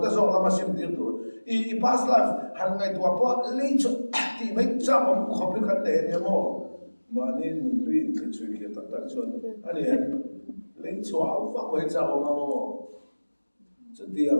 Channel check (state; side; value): inverted; both; correlation -1.00